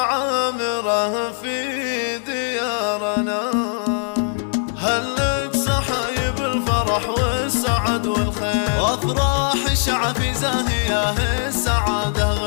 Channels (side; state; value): right; silent; digital silence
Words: عامرة في ديارنا. هلت صحايب الفرح والسعد والخير وافراح الشعب في زاهيه السعادة